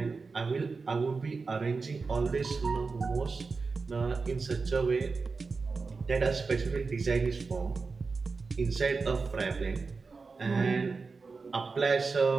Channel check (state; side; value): quieter; left; 4.4 dB